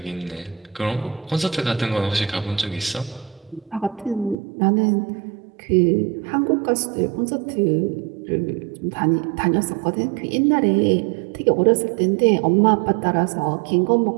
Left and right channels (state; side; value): drops out; left; at 4.4 s